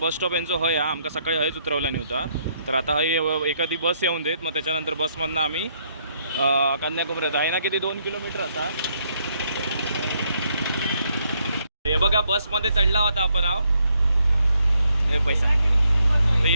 स्टॉप यांचं हय हा आमका सकाळी हयच उतरवला नव्हता, तर आता हय एखादी बस येऊन देत, मग त्याच्यानंतर बसमधनं आम्ही कन्याकुमारी आहे ना, किती 2 किलोमीटर असा. हे बघा बसमध्ये चढला होता आपण आहो, हे पैसा. तर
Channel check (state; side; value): inverted; both; correlation -0.73